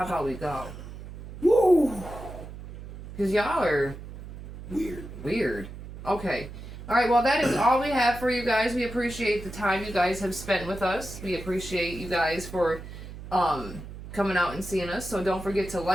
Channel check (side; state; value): right; noise; hum, 12 dB below the sound